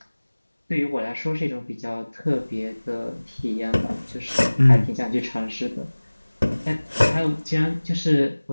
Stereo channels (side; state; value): both; inverted; correlation -1.00